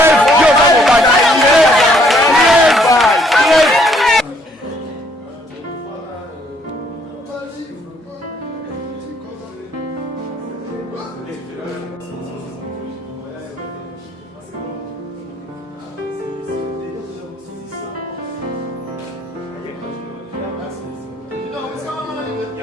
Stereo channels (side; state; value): both; normal; correlation 0.66